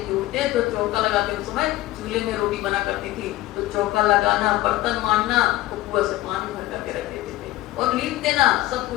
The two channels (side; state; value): right; quieter; 16.5 dB